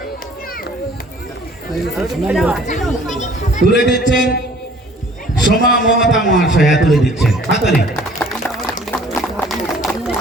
তুলে দিচ্ছেন সোমা মমতা মহাশয়া তুলে দিচ্ছেন হাততালি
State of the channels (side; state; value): both; normal; correlation 0.53